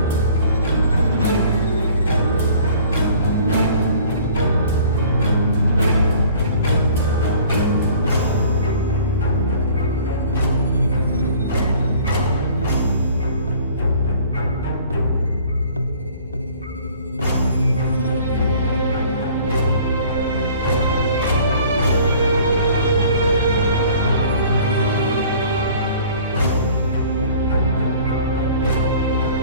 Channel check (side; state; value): both; inverted; correlation -0.51